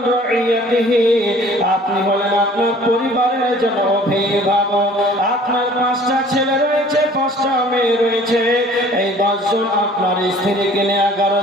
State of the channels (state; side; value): normal; both; correlation 0.51